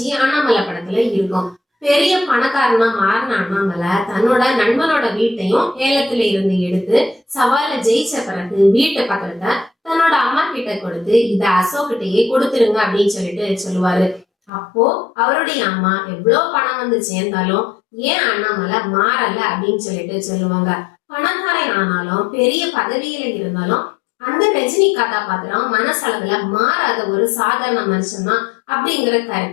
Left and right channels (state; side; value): drops out; right; at 14.5 s